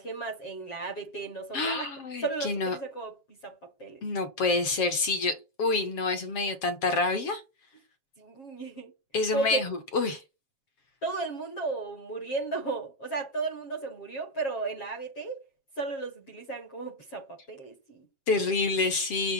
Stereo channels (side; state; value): right; late; 7.4 ms